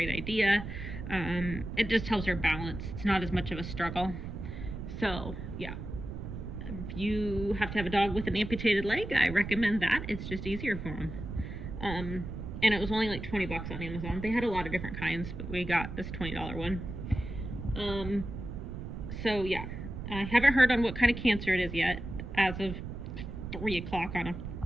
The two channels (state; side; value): noise; right; rumble, 8 dB below the sound